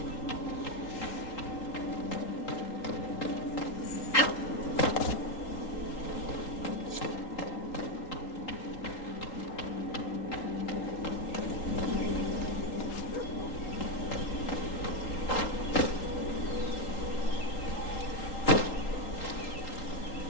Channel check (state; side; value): late; right; 3.8 ms